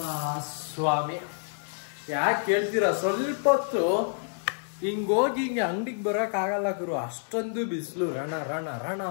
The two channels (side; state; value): right; silent; 59 dB below the other